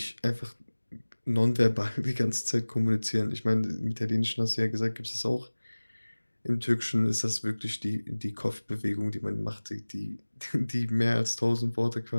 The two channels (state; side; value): inverted; both; correlation -1.00